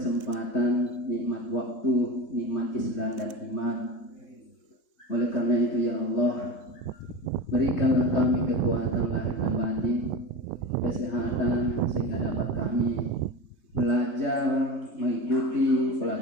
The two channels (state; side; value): late; right; 3.2 ms